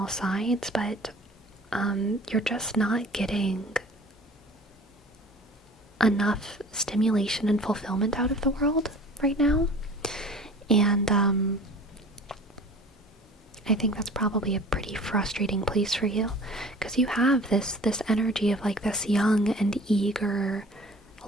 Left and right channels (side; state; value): both; normal; correlation 0.45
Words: sides, but you're just not getting enough stimulation and fulfillment out of the world right now. And I think that's probably a pretty frustrating place for you, because you have this energy of like this young and eager